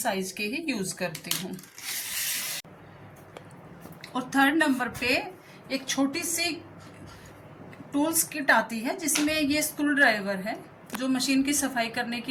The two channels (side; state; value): both; identical; correlation 1.00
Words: के ही यूज करती हूँ। और 3rd नंबर पे एक छोटी सी टूल्स किट आती है, जिसमें ये स्क्रू ड्राइवर है जो मशीन की सफाई करने